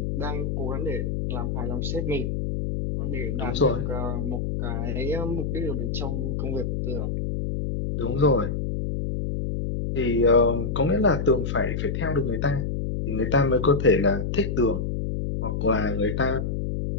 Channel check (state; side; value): noise; left; hum, 1 dB below the sound